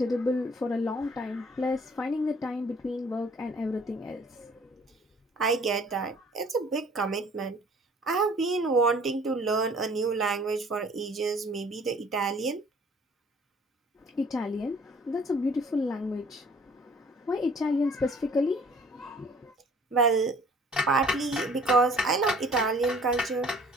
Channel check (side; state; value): both; normal; correlation 0.54